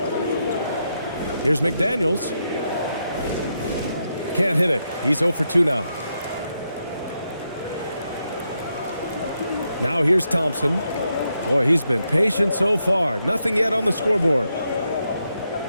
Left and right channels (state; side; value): inverted; both; correlation -0.82